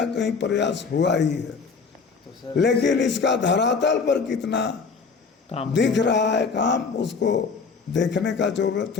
कहीं प्रयास हुआ ही है, लेकिन इसका धरातल पर कितना काम दिख रहा है काम, उसको देखने का जरूरत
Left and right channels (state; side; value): quieter; right; 5.1 dB